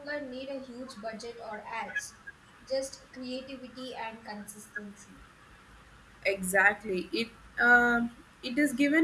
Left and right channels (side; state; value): both; identical; correlation 1.00